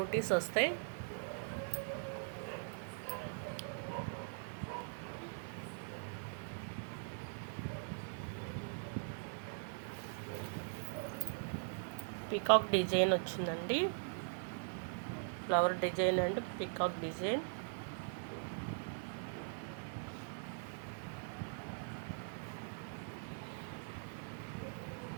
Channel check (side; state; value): left; silent; 50 dB below the other